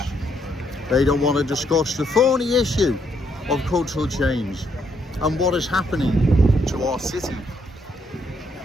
They don't want to discuss the thorny issue of cultural change and what is happening to our city.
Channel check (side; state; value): both; normal; correlation 0.73